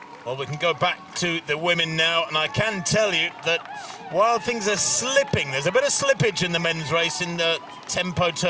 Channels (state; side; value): identical; both; correlation 1.00